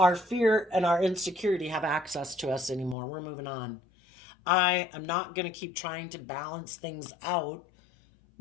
fear and our insecurity have access to us anymore. We're moving on. I am not going to keep trying to balance things out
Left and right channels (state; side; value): drops out; right; at 3.0 s